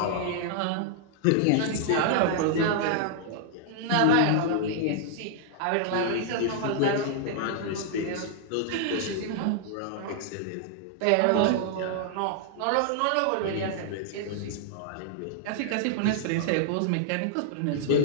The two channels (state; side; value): different; both; correlation -0.01